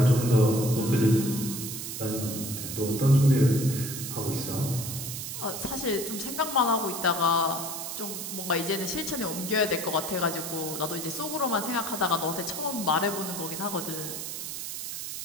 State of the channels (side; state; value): right; noise; hiss, 6 dB below the sound